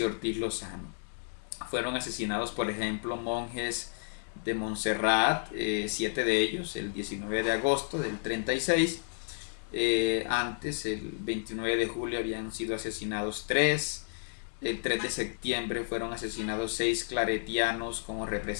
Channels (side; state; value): right; silent; digital silence